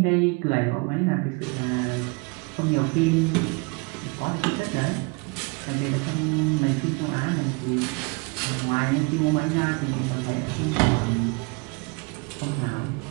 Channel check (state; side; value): quieter; left; 29.9 dB